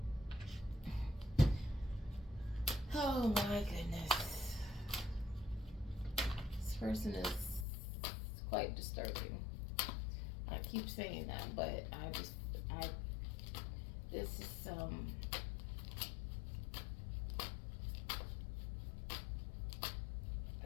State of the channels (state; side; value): drops out; right; at 7.7 s